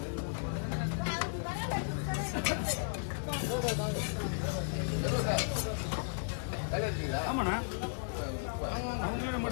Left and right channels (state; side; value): silent; right; digital silence